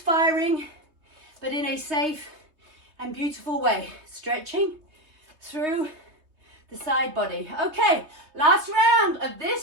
but in a safe and beautiful way. Stretching through the side body. Okay, last round of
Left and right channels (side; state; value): left; late; 3.2 ms